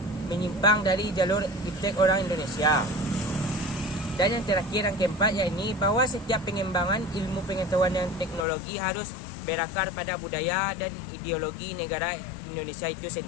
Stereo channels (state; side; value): drops out; right; at 8.5 s